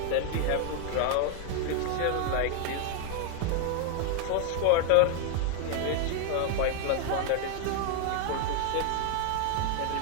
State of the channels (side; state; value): both; different; correlation 0.00